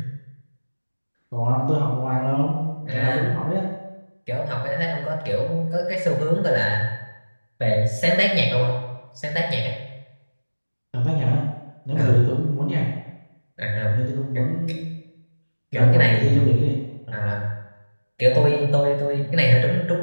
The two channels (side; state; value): both; inverted; correlation -1.00